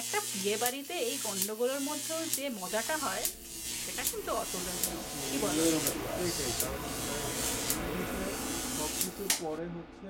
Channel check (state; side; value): identical; both; correlation 1.00